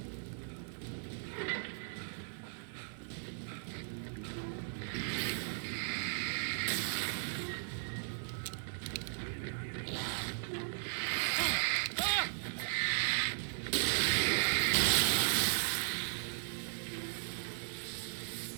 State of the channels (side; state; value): left; silent; digital silence